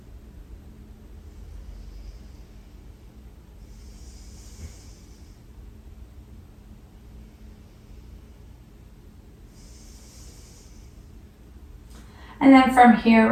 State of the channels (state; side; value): identical; both; correlation 1.00